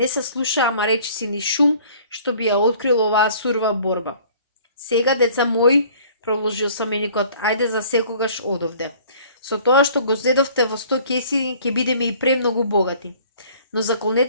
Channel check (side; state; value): both; inverted; correlation -0.52